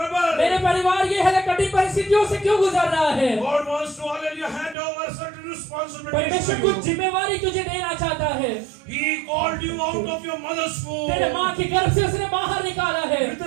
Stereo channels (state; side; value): drops out; left; at 4.8 s